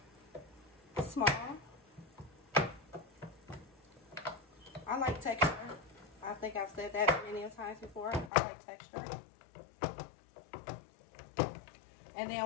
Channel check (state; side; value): drops out; right; at 8.3 s